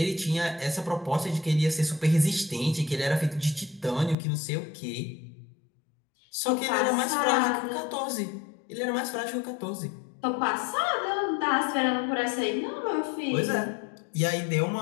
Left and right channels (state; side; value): drops out; right; at 4.2 s